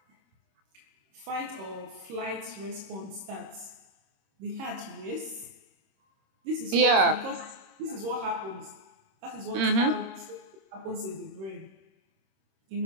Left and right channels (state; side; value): late; left; 26 ms